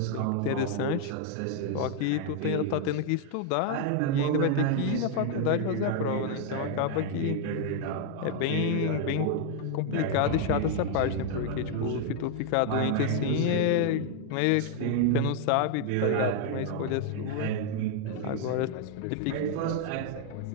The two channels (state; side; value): different; both; correlation 0.00